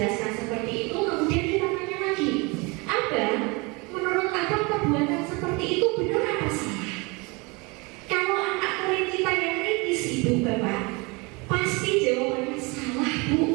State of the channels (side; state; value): left; quieter; 27.4 dB